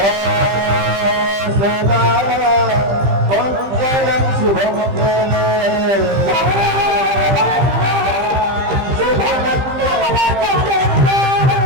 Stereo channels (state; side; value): late; left; 15 ms